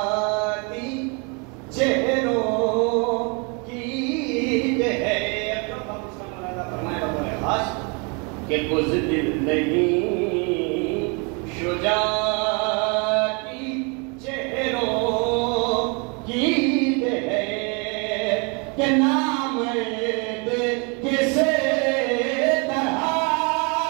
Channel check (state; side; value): quieter; left; 32.8 dB